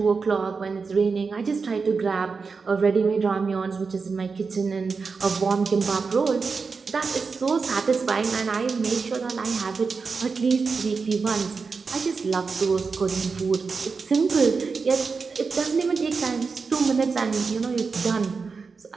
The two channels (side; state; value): left; quieter; 4.8 dB